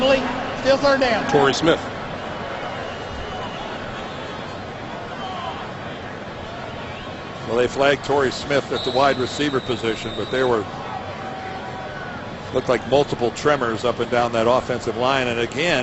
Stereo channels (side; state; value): both; identical; correlation 1.00